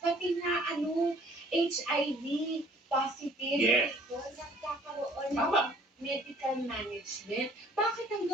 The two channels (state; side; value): normal; both; correlation 0.56